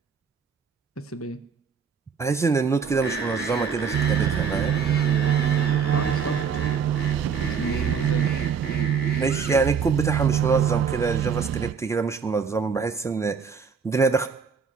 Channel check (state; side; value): quieter; left; 6.2 dB